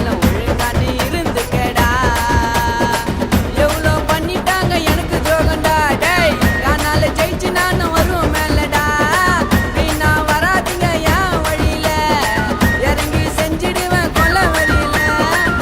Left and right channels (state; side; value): identical; both; correlation 1.00